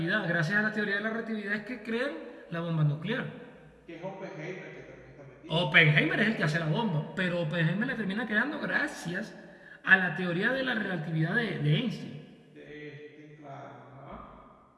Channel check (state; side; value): identical; both; correlation 1.00